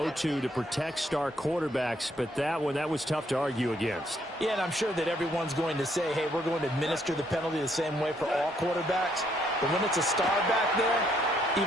to protect star quarterbacks, but that was tough to argue against. Yeah, and I'm sure that everyone's going to say, hey, we're going to administer the penalty the same way for all quarterbacks. But when it's a star back there,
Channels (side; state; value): both; normal; correlation 0.70